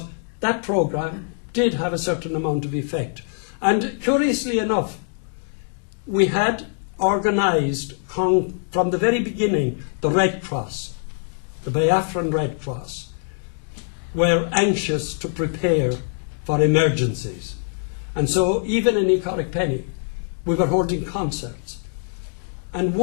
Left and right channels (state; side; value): silent; right; digital silence